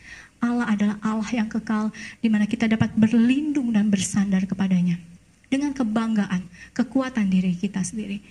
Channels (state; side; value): identical; both; correlation 1.00